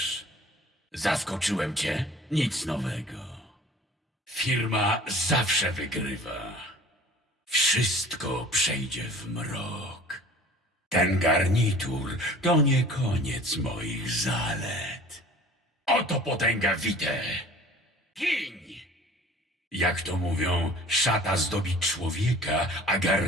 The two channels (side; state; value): both; normal; correlation 0.47